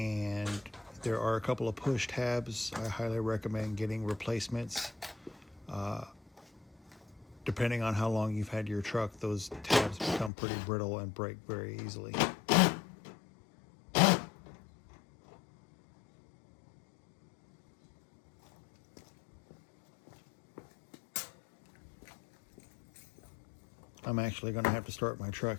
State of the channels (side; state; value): right; drops out; at 10.3 s